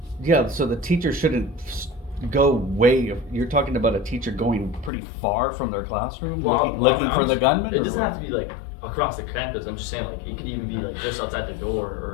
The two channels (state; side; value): drops out; right; at 4.9 s